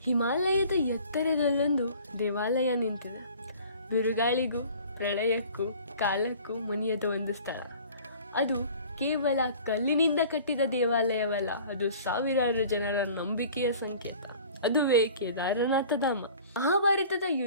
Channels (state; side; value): inverted; both; correlation -0.47